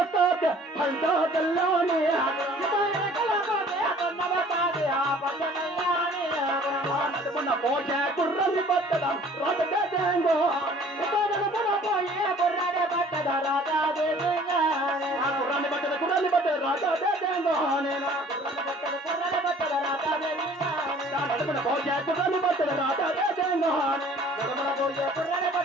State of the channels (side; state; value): both; normal; correlation 0.52